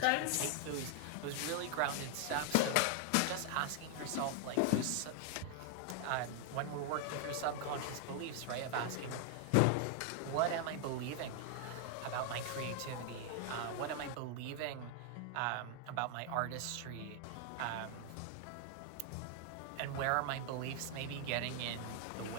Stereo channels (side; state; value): both; different; correlation 0.00